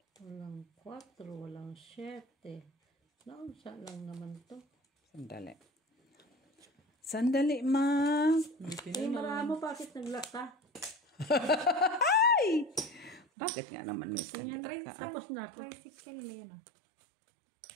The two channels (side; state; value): left; drops out; at 13.2 s